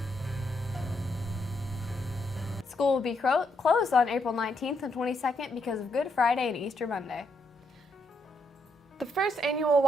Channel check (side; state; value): both; normal; correlation 0.77